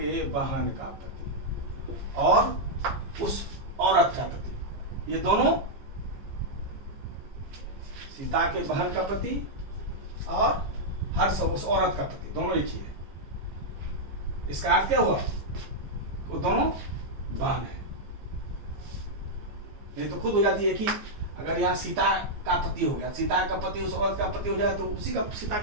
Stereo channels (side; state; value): left; late; 14 ms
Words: बहन का पति और उस औरत का पति, ये दोनों सीता के बहन का पति और हर सब उस औरत का पति, दोनों एक ही है। इसका अर्थ क्या हुआ? वो दोनों बहन है। नहीं तो खुद हो जाती है कि अगर यहाँ सीता का पति हो गया, सीता का पति उस औरत का पति हो जाए, तो उसी का सीता